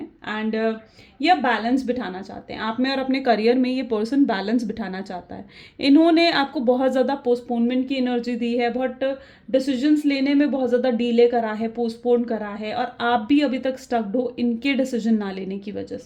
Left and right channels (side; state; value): both; identical; correlation 1.00